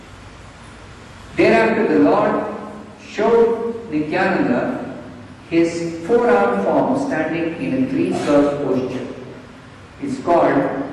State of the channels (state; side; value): identical; both; correlation 1.00